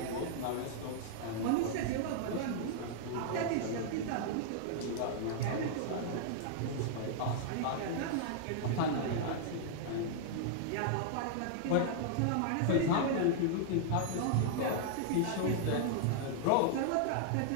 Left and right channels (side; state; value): both; different; correlation -0.01